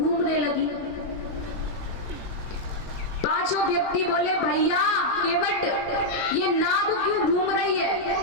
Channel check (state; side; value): late; right; 19 ms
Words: लगी। पांचों व्यक्ति बोले भैया केवट ये नाव क्यों घूम रही है?